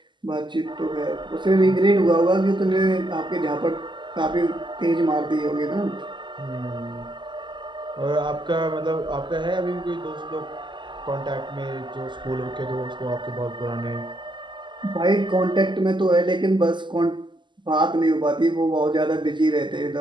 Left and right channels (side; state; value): left; late; 0.22 ms